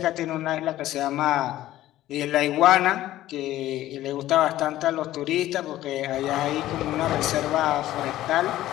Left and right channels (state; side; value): quieter; right; 14.5 dB